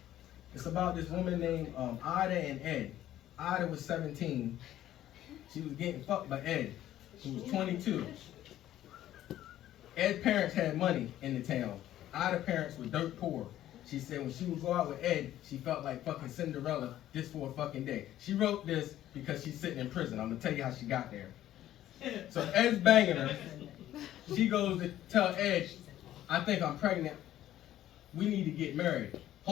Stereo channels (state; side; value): quieter; right; 12.9 dB